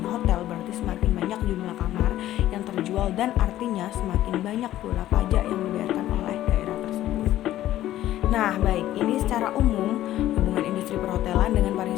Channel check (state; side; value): quieter; right; 13.6 dB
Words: hotel, berarti semakin banyak jumlah kamar yang terjual, dan artinya semakin banyak pula pajak yang dibayarkan oleh daerah tersebut. Nah, baik, ini secara umum hubungan industri perhotelan dengan